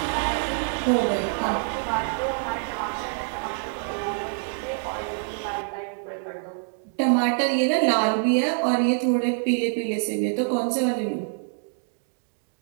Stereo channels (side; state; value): left; silent; 61 dB below the other